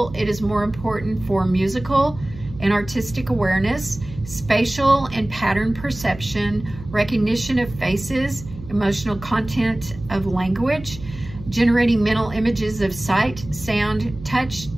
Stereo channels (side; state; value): right; noise; hum, 14 dB below the sound